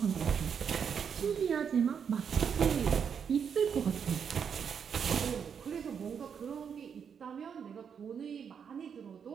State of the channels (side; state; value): left; quieter; 7.2 dB